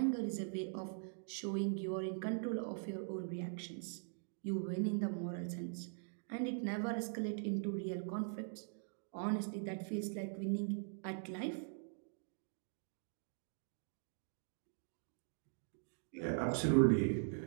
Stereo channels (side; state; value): left; silent; digital silence